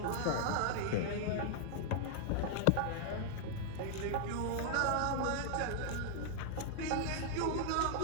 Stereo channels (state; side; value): different; both; correlation -0.01